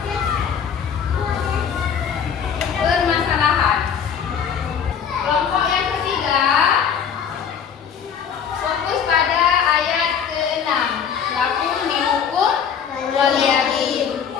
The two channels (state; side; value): quieter; right; 7.5 dB